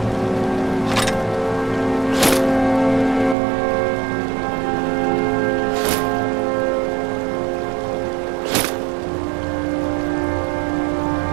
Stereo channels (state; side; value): drops out; left; at 3.4 s